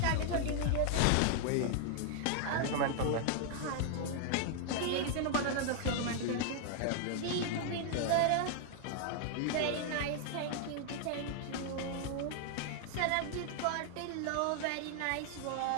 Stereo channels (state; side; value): different; both; correlation 0.00